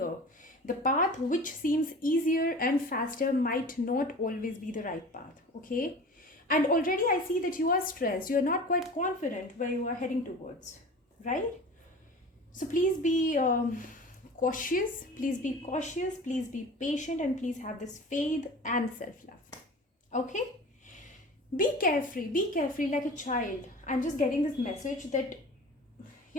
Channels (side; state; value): both; normal; correlation 0.38